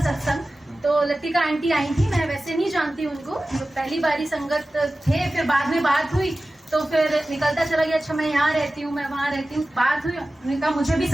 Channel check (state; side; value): normal; both; correlation 0.96